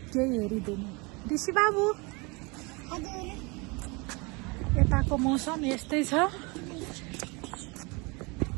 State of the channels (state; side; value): quieter; left; 28.3 dB